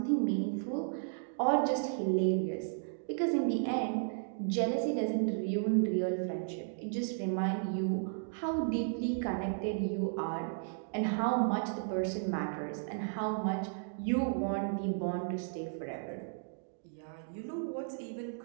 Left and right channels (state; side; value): silent; left; digital silence